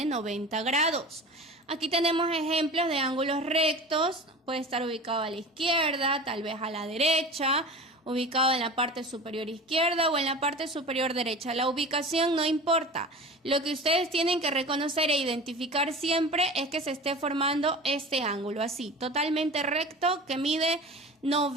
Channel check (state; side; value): normal; both; correlation 0.36